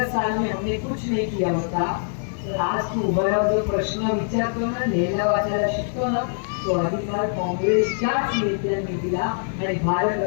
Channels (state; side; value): silent; right; digital silence